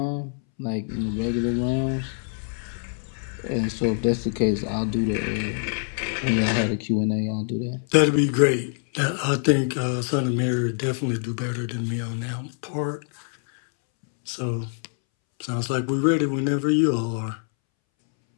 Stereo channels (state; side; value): silent; right; 62 dB below the other